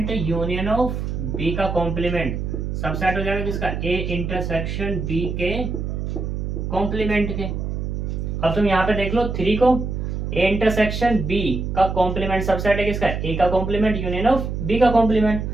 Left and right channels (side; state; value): right; noise; hum, 3 dB below the sound